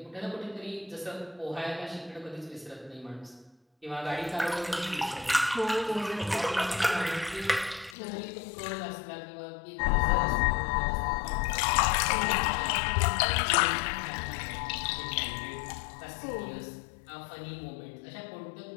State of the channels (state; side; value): drops out; right; at 8.0 s